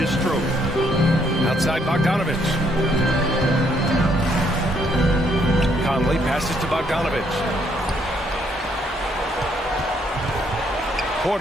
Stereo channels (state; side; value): normal; both; correlation 0.69